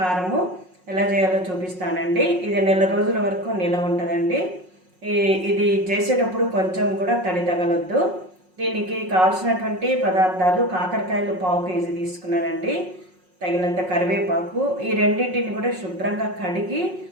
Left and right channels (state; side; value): late; left; 5.5 ms